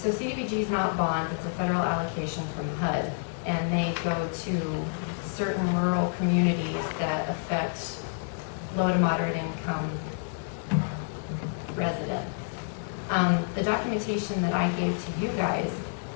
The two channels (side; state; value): right; silent; digital silence